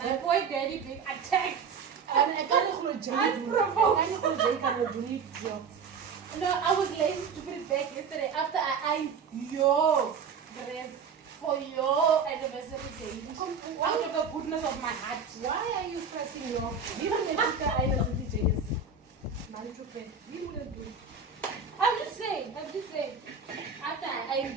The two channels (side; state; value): left; quieter; 5.6 dB